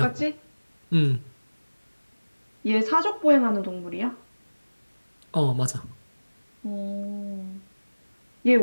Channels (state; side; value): inverted; both; correlation -1.00